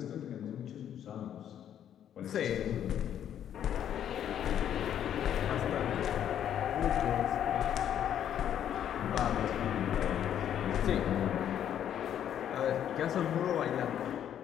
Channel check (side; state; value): right; quieter; 10.0 dB